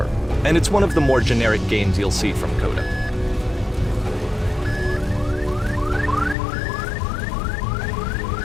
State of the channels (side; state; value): right; drops out; at 6.4 s